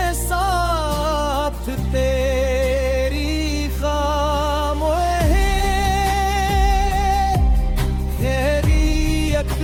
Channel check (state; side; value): identical; both; correlation 1.00